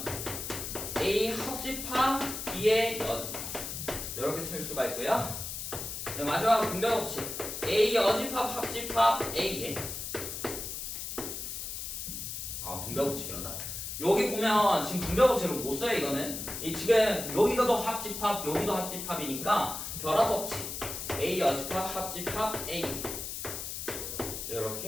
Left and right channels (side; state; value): left; noise; hiss, 6 dB below the sound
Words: A 합집합 B의 여집합 이렇게 쓸 수가 있고요. 네, 마지막으로 분배 법칙 A 여집합 합집합 A의 분배 법칙이란다. 여기 보면 지금 분배 법칙을 못 써요. 이거는 이 지금 여기가도 합집합 여기도 합집합이니까 결합 법칙 A 여집합 합집합 A